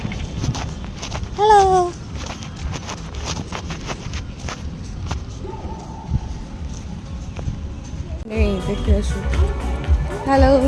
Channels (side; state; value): both; identical; correlation 1.00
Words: হ্যালো। এই দেখে আসো, হ্যালো।